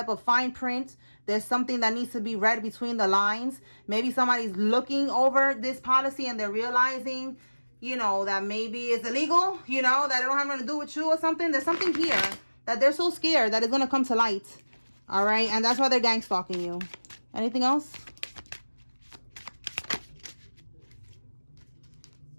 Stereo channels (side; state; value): both; inverted; correlation -1.00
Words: of fine print. There's something that needs to be read between the lines. Maybe somebody's looking over this policy and they're realizing, you know, that maybe it's illegal, you know, that it don't have nothing to do with you or something. There's something here that they're so scared that it's going to come to light. All right, and that's why they're gang stalking you. Anything else?